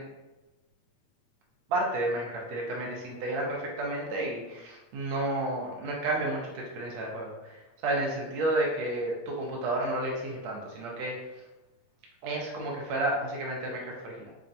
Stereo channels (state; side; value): late; left; 8.6 ms